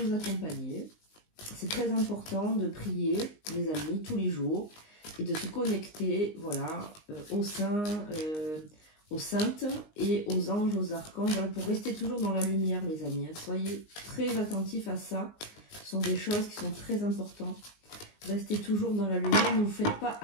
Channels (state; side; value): late; right; 19 ms